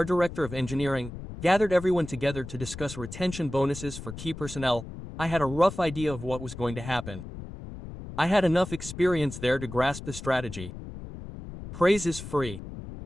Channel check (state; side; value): noise; left; rumble, 11 dB below the sound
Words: director of engineering, gathered everyone together to discuss retention bonuses for key personnel, I had a rough idea of what was going to happen. I had enough experience there to grasp the strategy. Praise is free.